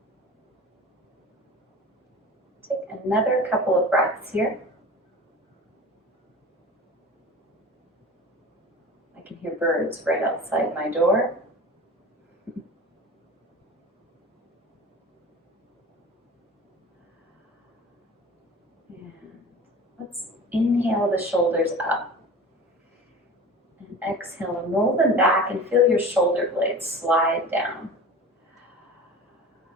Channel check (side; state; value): both; normal; correlation 0.37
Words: Take another couple of breaths here. I can hear birds right outside my door. Let's inhale the shoulders up and exhale and roll them back and feel your shoulder blades slide down.